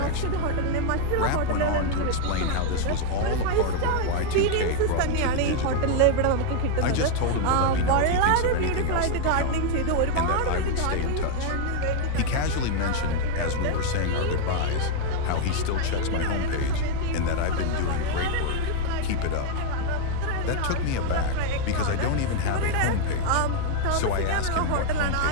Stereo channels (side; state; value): both; different; correlation 0.00